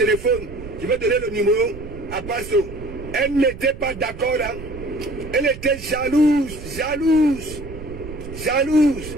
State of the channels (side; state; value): right; noise; rumble, 13 dB below the sound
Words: je vais donner le numéro à Pasto. Elle n'était pas d'accord, hein. Elle était jalouse.